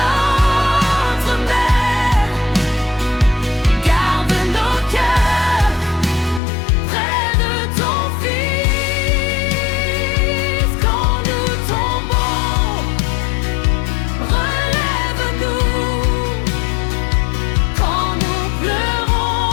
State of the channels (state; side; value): drops out; right; at 6.4 s